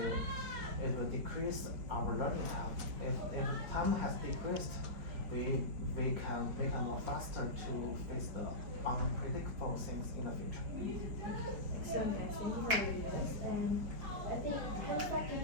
will decrease our learning time. If time has decreased, we can more faster to face the unpredictable things in the future. Excellent, guys. Thank you for your ideas. And I think Hanifa, can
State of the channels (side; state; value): left; late; 4.8 ms